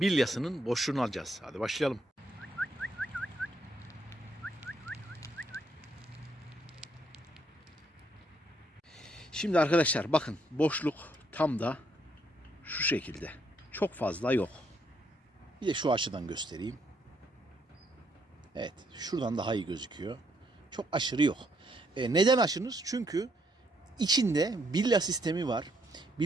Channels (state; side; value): normal; both; correlation 0.72